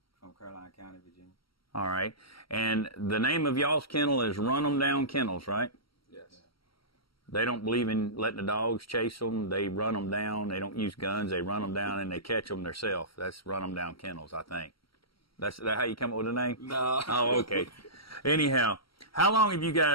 from Caroline County, Virginia. All right. And the name of y'all's kennel is Run 'em Down Kennels, right? Yes. They don't believe in letting the dogs chase them. They run them down. They don't use guns. They run them down and they catch them themselves. That's Run 'em Down Kennels, I think. That's that how you come up with the name? No. Oh, okay. Anyhow, how long have you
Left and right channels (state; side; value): late; right; 0.75 ms